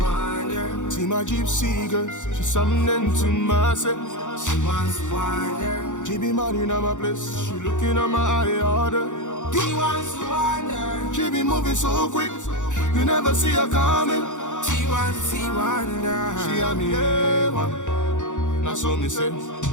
wander. See my gypsy girl, she's something to myself. She wants to wander. She be mad in my place, she looking at my eye order. She wants to wander. She be moving so quick, you never see her coming. She wants to see wander. She and me now so me say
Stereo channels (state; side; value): late; right; 0.86 ms